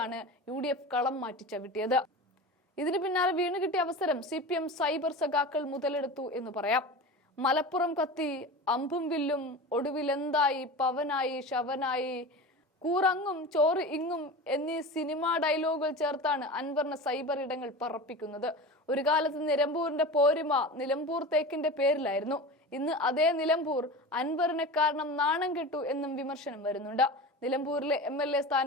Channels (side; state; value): both; normal; correlation 0.30